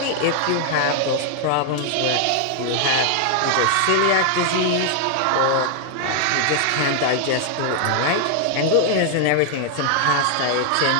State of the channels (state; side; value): different; both; correlation 0.00